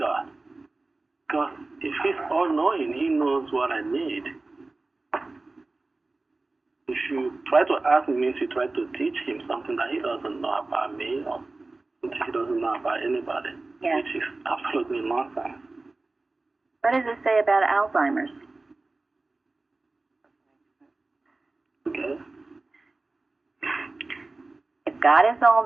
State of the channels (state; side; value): quieter; left; 3.3 dB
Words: Because if He's all-knowing, He knows what I need. If you try to ask Him, means you try to teach Him something that He doesn't know about me or something He doesn't know about anybody, which is absolutely nonsense. What does it say about Alzheimer's? Okay. If God is